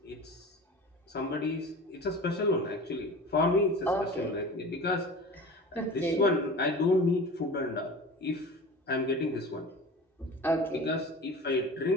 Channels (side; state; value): both; normal; correlation 0.36